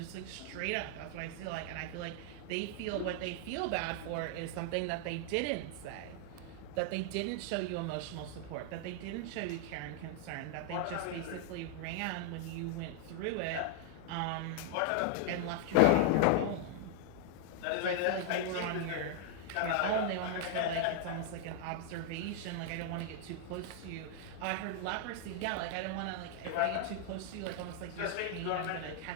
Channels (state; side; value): different; both; correlation 0.00